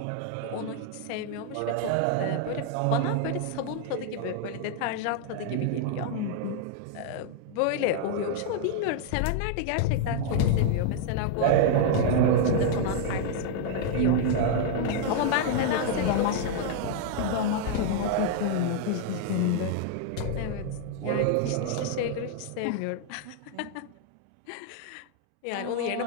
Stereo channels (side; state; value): both; different; correlation 0.00